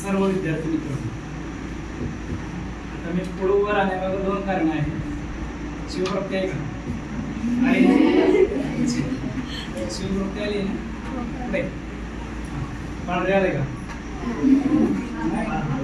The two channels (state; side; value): identical; both; correlation 1.00